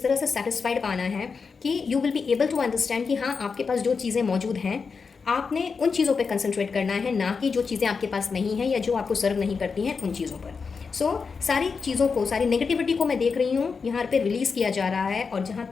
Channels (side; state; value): right; quieter; 5.2 dB